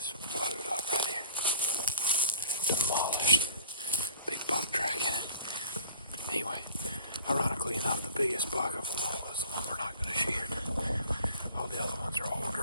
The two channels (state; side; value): inverted; both; correlation -0.50